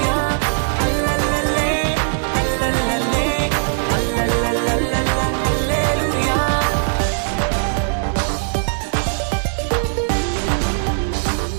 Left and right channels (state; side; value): silent; left; digital silence